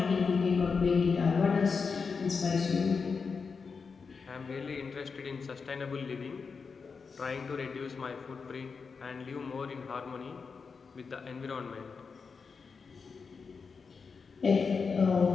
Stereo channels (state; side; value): quieter; right; 5.2 dB